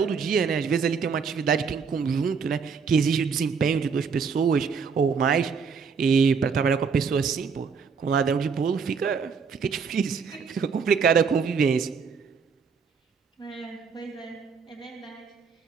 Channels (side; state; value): left; quieter; 5.8 dB